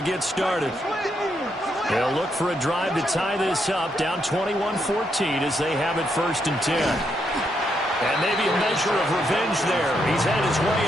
started. They'll look for a drive to tie this up, down 21-14 as they have it 1st and 10. And maybe a measure of revenge there. He's had his way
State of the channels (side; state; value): both; normal; correlation 0.78